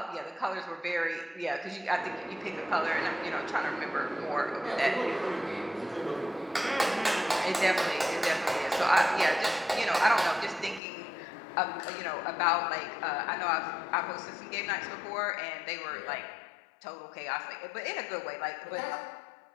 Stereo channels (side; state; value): right; drops out; at 10.8 s